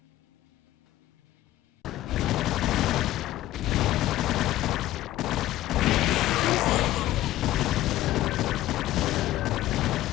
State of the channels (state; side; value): quieter; right; 15.0 dB